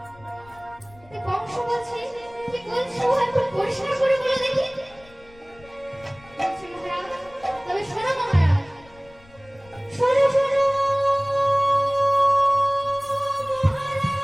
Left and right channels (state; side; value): noise; left; rumble, 25 dB below the sound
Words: কংস বলছে কি বলছো একটু পরিষ্কার করে বলে দেখি। বলছে মহারাজ, তবে শোনো মহারাজ, শোনো শোনো মহারাজ,